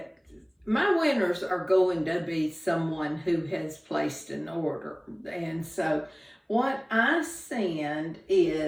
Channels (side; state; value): both; identical; correlation 1.00